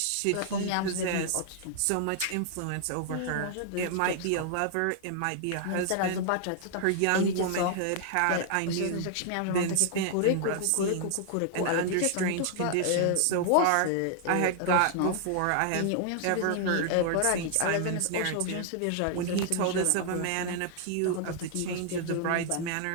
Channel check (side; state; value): both; different; correlation -0.01